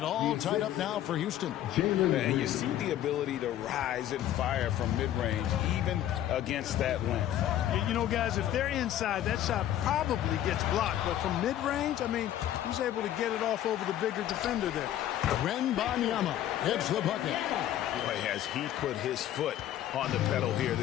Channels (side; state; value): right; quieter; 12.1 dB